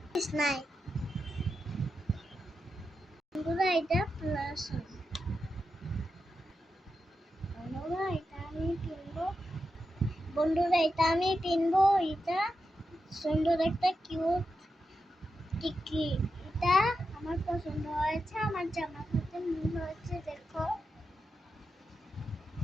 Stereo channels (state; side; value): normal; both; correlation 0.88